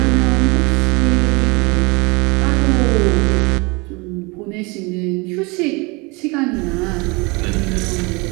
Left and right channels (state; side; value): quieter; left; 27.1 dB